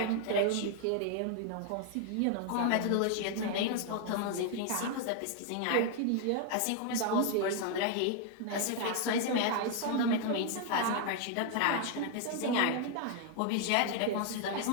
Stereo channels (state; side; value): different; both; correlation 0.00